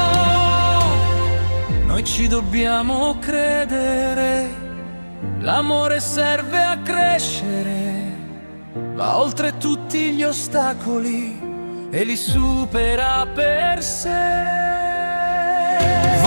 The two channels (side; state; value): both; inverted; correlation -1.00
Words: Noi ci dobbiamo credere, l'amore serve a crescere, va oltre tutti gli ostacoli e li supera per sé.